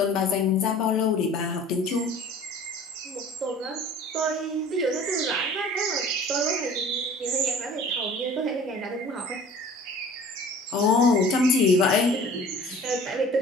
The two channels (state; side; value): normal; both; correlation 0.46